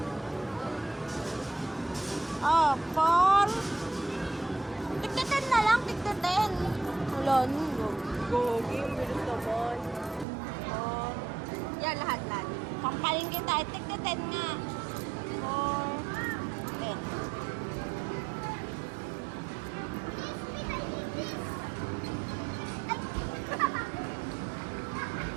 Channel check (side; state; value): left; drops out; at 10.2 s